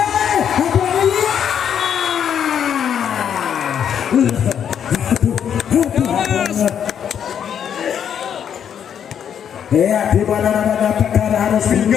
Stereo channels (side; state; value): right; quieter; 8.6 dB